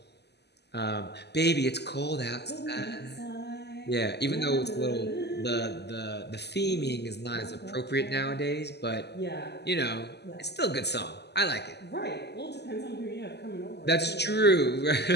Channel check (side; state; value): right; late; 0.49 ms